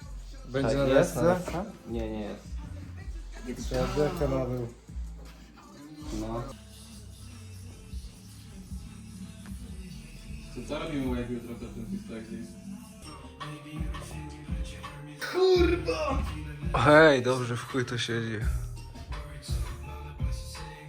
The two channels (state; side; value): identical; both; correlation 1.00